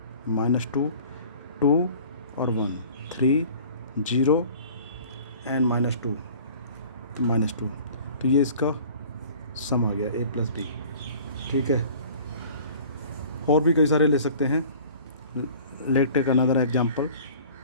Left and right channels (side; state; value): both; inverted; correlation -0.46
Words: -2 2 और 1 3 0 एंड -2 तो -2, तो ये इसका सम आ गया ए प्लस बी। ठीक है, और भी कई सारे ले सकते हैं। Let take another example,